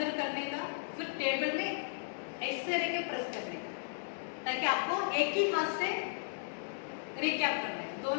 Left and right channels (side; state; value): right; silent; digital silence